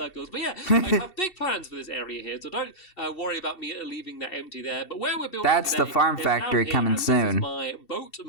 But yeah, I have big plans for this area here, so don't worry about me leaving that empty there. But where we're building That's the farm factory coming soon. This is my boat,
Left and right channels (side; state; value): right; late; 2.7 ms